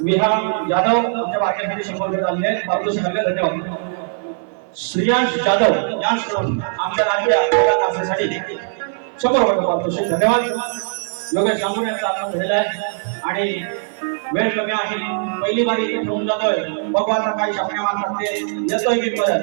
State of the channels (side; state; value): left; silent; 57 dB below the other